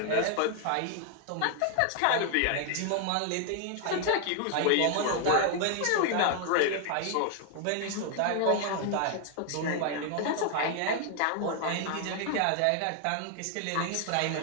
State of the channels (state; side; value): different; both; correlation 0.00